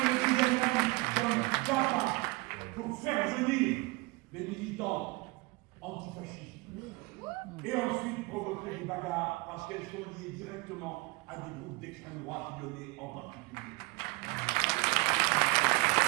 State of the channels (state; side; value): quieter; left; 24.3 dB